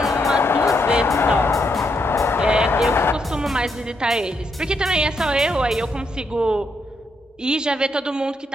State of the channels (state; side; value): normal; both; correlation 0.78